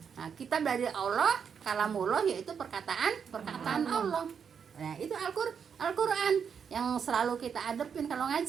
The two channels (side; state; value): left; quieter; 7.0 dB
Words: Nah, kitab dari Allah, kalamullah yaitu perkataan Allah. Nah, itu Al-Quran yang selalu kita hadapin kalau